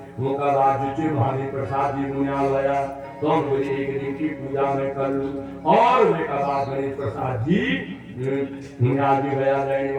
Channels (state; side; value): identical; both; correlation 1.00